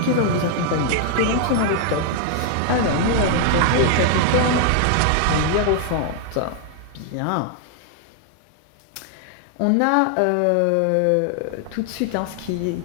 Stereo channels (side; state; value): both; different; correlation 0.00